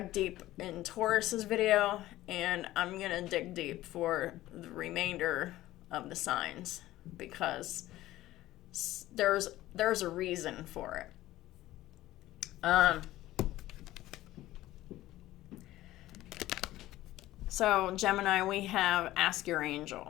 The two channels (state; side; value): quieter; right; 15.8 dB